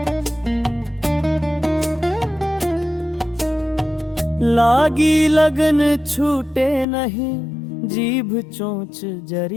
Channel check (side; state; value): right; drops out; at 6.9 s